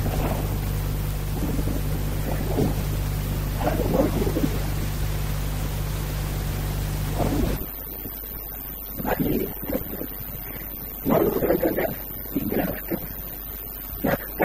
ప్రభావం ఉంటుంది. అలాగే వరుణుడు మీద, వరుణుడు అది నెప్ట్యూన్. వరుణుడు ఏంటంటే ఈ బిలాంగ్స్ టు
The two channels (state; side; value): identical; both; correlation 1.00